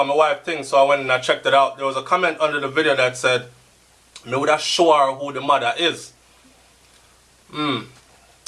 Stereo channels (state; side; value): identical; both; correlation 1.00